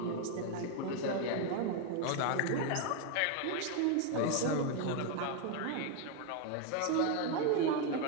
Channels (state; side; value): different; both; correlation 0.01